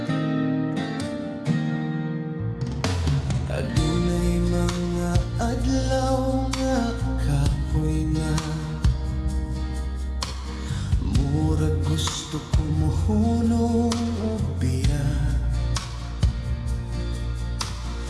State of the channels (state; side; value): identical; both; correlation 1.00